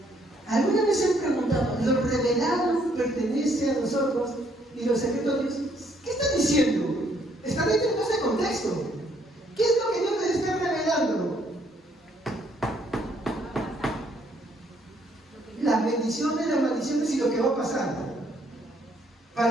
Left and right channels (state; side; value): normal; both; correlation 0.68